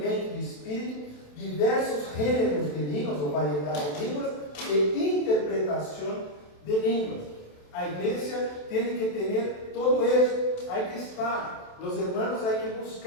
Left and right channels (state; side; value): late; right; 27 ms